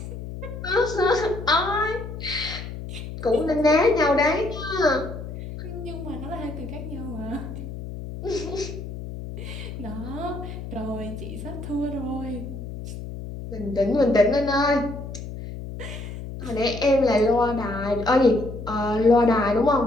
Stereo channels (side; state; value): left; noise; hum, 9 dB below the sound